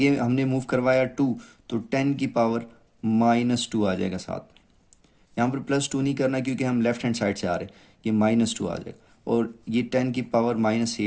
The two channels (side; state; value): both; identical; correlation 1.00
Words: हमने मूव करवाया 2, तो 10 की पावर -2 आ जाएगा साथ में। यहाँ पर +2 नहीं करना क्योंकि हम लेफ्ट हैंड साइड से आ रहे हैं, ये -2 आ जाएगा और ये 10 की पावर